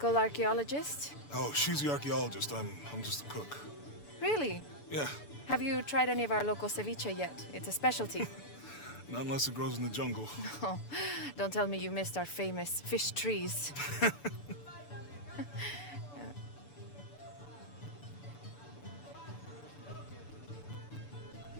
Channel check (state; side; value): late; right; 6.9 ms